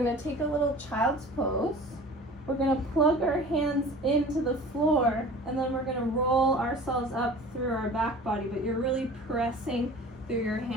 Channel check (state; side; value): normal; both; correlation 0.42